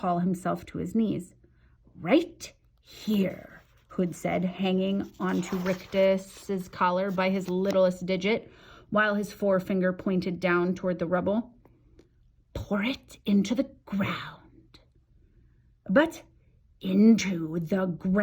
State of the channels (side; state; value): both; identical; correlation 1.00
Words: himself to his knees. Right here, Hood said, hanging onto Rictus's collar by his littlest digit, while his forefinger pointed down toward the rubble. Pour it into the ground. But into the